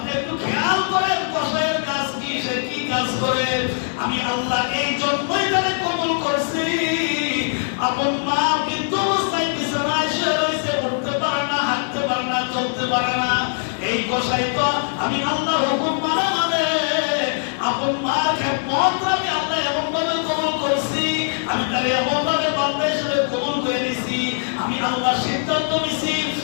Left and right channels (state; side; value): silent; right; 58 dB below the other